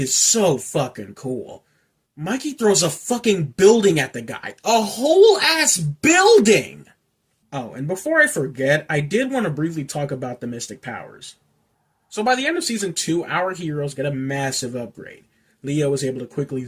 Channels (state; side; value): identical; both; correlation 1.00